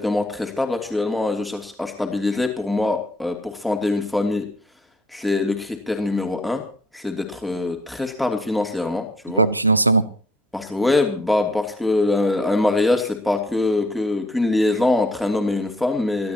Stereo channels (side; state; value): both; normal; correlation 0.59